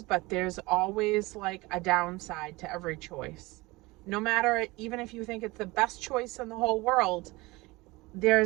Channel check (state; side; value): quieter; left; 22.3 dB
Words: but there's always like a downside to every choice. No matter, even if you think it's the best choice in the whole world,